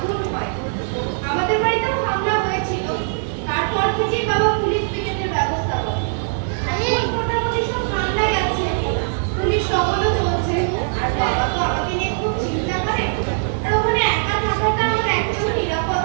আমাদের বাড়িতেও হামলা হয়েছিল তারপর থেকেই বাবা পুলিশ পিকেটের ব্যবস্থা করে এখন মোটামুটি সব ঠান্ডাই আছে পুলিশ টহলও চলছে আর বাবা তো আমাকে নিয়ে খুব চিন্তা করে আর ওখানে একা থাকাটা আমার একদম নিরাপদ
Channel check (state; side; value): silent; left; digital silence